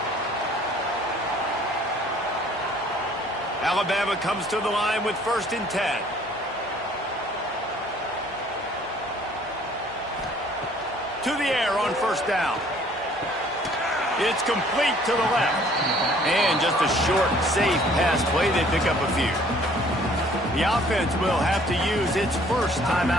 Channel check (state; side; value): normal; both; correlation 0.57